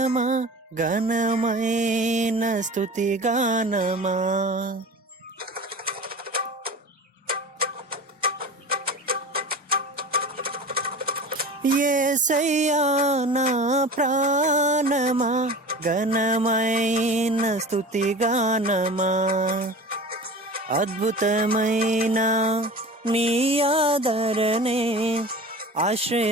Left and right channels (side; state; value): both; normal; correlation 0.35